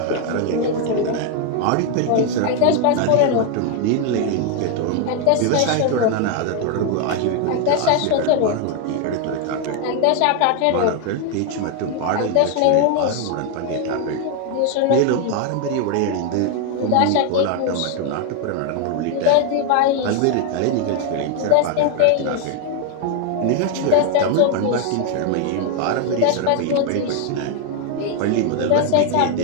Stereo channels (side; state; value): both; different; correlation 0.01